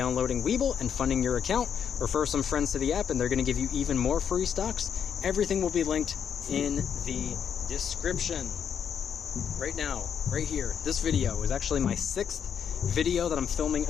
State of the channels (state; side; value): quieter; right; 7.9 dB